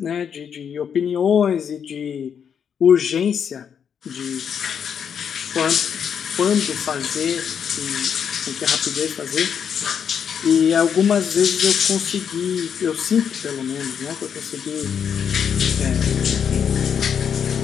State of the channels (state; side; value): quieter; right; 7.6 dB